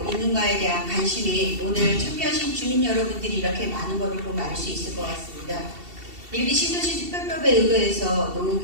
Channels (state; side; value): late; left; 2.7 ms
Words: 있는가에 대한 관심이 오늘 참여하신 주민 여러분들이 이렇게 많은 것을 보면 알 수 있을 것 같습니다. 일기 신도시 특별법에 의거해서